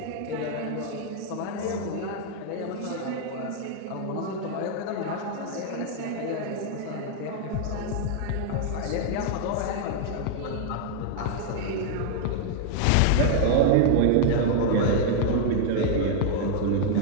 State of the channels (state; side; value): different; both; correlation 0.00